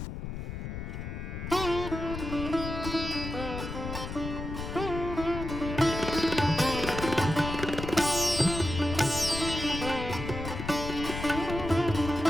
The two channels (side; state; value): left; noise; rumble, 6 dB below the sound